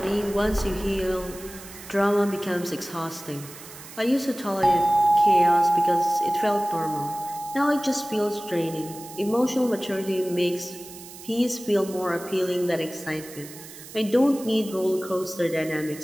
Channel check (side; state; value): right; noise; hiss, 16 dB below the sound